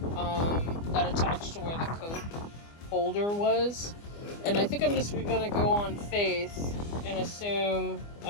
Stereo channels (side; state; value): right; late; 24 ms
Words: that attach to where the coat holder was. And I think I'm just gonna go on faith and assume